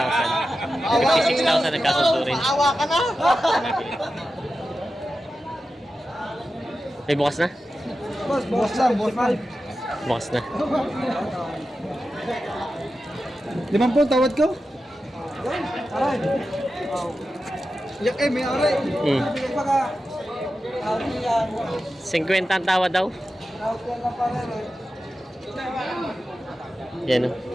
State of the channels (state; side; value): normal; both; correlation 0.92